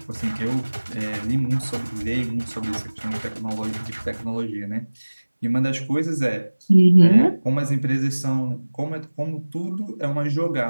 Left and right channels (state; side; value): inverted; both; correlation -1.00